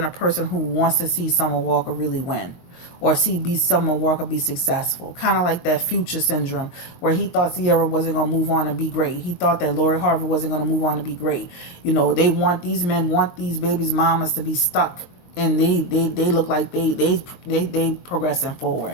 a person who wants to see Summer Walker really win, or see Summer Walker be successful. Kind of like that Future syndrome, where he thought Sierra wasn't going to move on and be great. He thought that Lori Harvey wasn't going to move on to be great. These men want these babies' mamas to be stuck, and they look like they progressing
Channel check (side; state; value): right; late; 22 ms